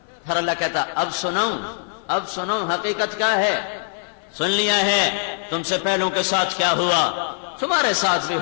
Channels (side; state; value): right; silent; 63 dB below the other